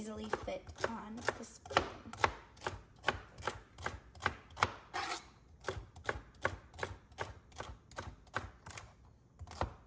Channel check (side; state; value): both; identical; correlation 1.00